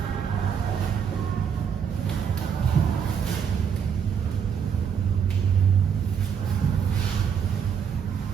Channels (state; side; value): quieter; left; 7.3 dB